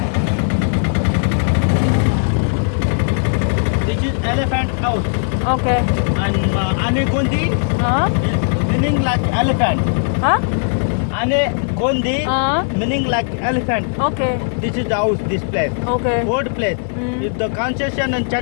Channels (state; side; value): silent; right; 68 dB below the other